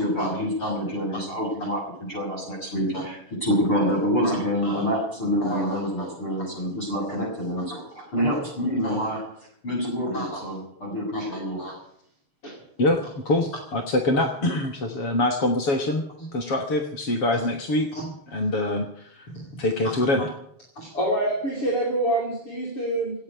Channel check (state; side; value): late; right; 7.1 ms